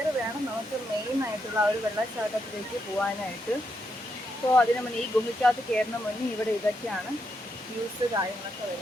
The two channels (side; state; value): both; normal; correlation 0.81